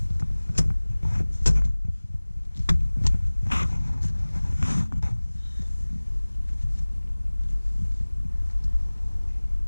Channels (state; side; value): inverted; both; correlation -1.00